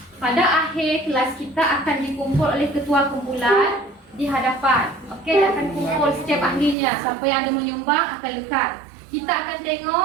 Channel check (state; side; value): drops out; left; at 6.8 s